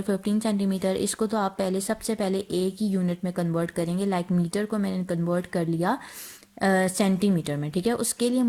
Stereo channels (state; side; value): identical; both; correlation 1.00